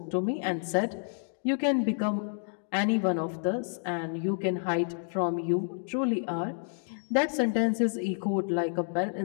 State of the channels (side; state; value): right; silent; digital silence